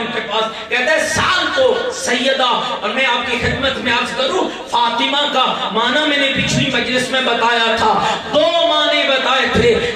کے پاس، کہتا ہے سال کو سیدہ، اور میں آپ کی خدمت میں عرض کروں فاطمہ کا معنی میں نے پچھلی مجلس میں بتایا تھا. 2 معنی بتائے تھے،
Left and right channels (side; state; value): both; identical; correlation 1.00